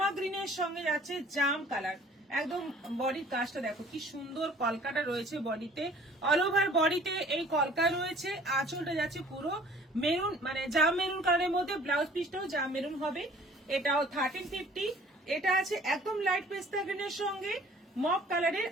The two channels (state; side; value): normal; both; correlation 0.52